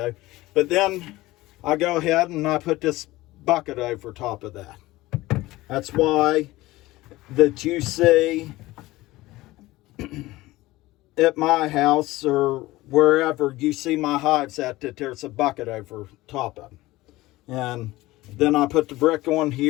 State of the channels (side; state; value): right; quieter; 18.6 dB